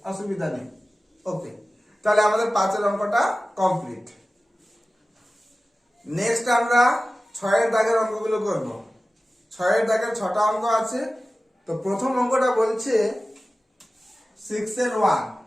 অসুবিধা নেই। ওকে, তাহলে আমাদের 5-এর অঙ্কটা কমপ্লিট। নেক্সট আমরা 6-এর দাগের অঙ্কগুলো করব। 6-এর দাগের 6টা অঙ্ক আছে। তো প্রথম অঙ্কটা বলছে 6-এর 1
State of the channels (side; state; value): both; normal; correlation 0.96